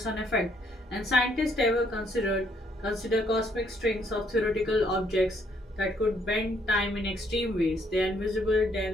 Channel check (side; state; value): both; normal; correlation 0.69